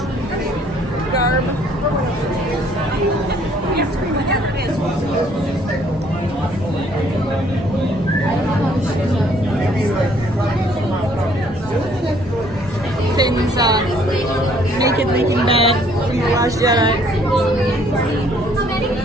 garb. Finn's naked leaking bed from The Last Jedi.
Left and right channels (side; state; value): both; normal; correlation 0.62